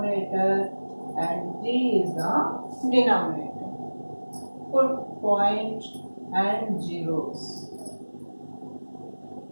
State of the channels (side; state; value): both; inverted; correlation -1.00